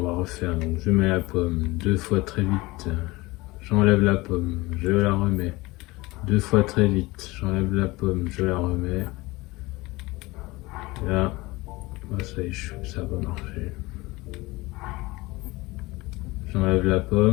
va refaire. Donc je mets la pomme 2 fois très vite. J'enlève la pomme, je la remets. 2 fois très vite, j'enlève la pomme, je la remets. Là, ça échoue, ça va marcher. J'enlève la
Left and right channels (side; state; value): right; quieter; 21.6 dB